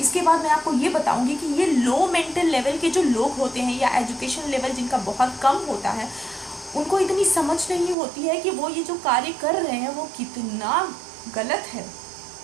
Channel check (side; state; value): left; drops out; at 8.0 s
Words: इसके बाद मैं आपको ये बताऊंगी कि ये लो मेंटल लेवल के जो लोग होते हैं या एजुकेशन लेवल जिनका बहुत कम होता है, उनको इतनी समझ नहीं होती है कि वो ये जो कार्य कर रहे हैं वो कितना गलत है,